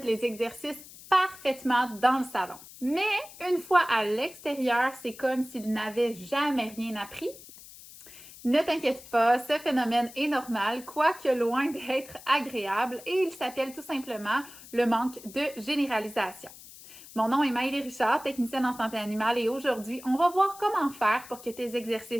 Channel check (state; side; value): noise; left; hiss, 18 dB below the sound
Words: les exercices parfaitement dans le salon. Mais une fois à l'extérieur, c'est comme s'il n'avait jamais rien appris. Ne t'inquiète pas, ce phénomène est normal, quoique loin d'être agréable, et il s'appelle tout simplement le manque de généralisation. Mon nom est Maëlie Richard, technicienne en santé animale, et aujourd'hui, on va voir comment faire pour que tes